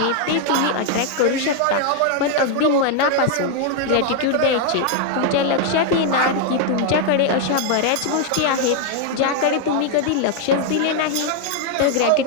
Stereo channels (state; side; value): different; both; correlation 0.00